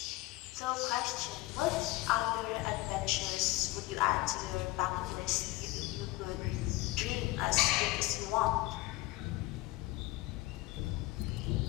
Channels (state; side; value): quieter; right; 19.5 dB